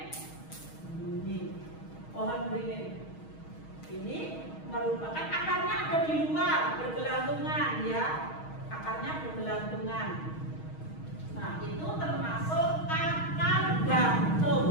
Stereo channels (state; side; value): late; right; 6.3 ms